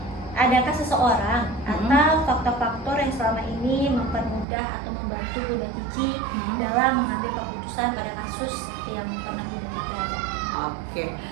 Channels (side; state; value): left; drops out; at 4.5 s